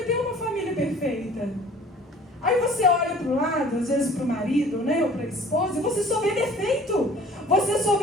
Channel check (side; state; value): both; normal; correlation 0.50